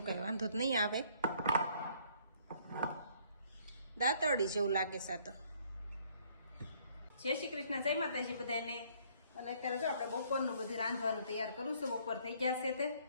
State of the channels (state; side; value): inverted; both; correlation -0.62